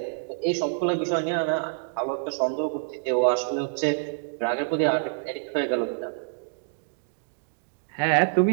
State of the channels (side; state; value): left; silent; digital silence